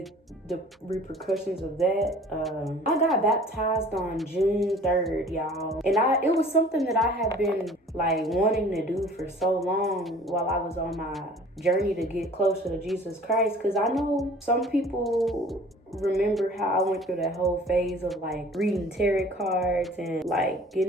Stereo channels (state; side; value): normal; both; correlation 0.49